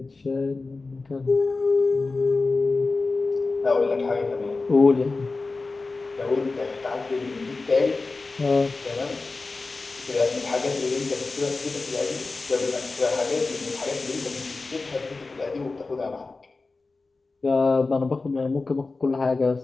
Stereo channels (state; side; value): quieter; right; 3.7 dB